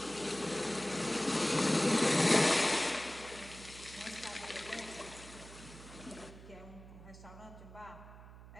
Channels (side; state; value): right; noise; hum, 17 dB below the sound